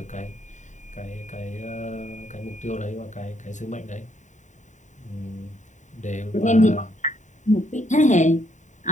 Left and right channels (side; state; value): right; late; 0.35 ms